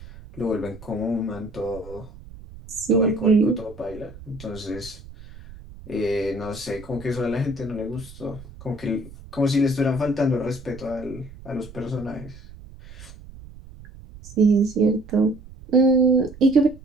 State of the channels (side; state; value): right; noise; rumble, 18 dB below the sound